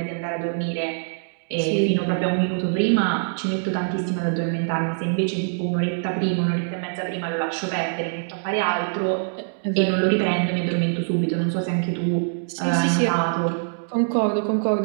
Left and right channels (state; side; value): silent; left; digital silence